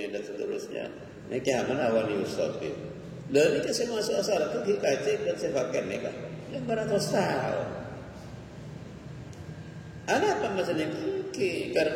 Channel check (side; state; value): both; identical; correlation 1.00